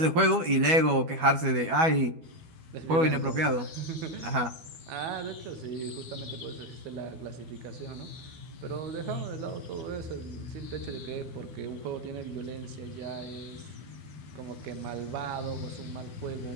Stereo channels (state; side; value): late; left; 12 ms